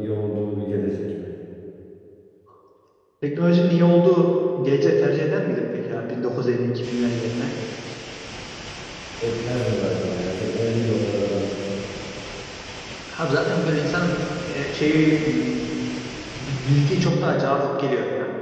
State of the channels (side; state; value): both; identical; correlation 1.00